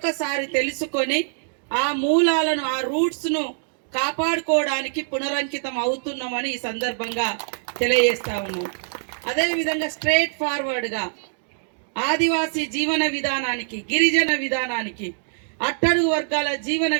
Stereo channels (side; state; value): left; silent; digital silence